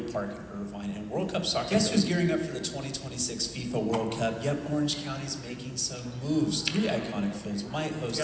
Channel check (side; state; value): both; identical; correlation 1.00